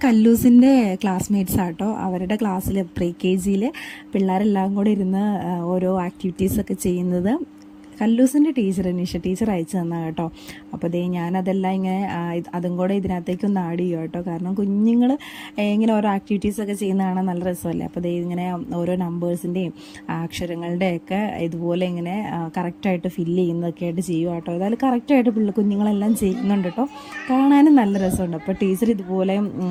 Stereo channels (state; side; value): identical; both; correlation 1.00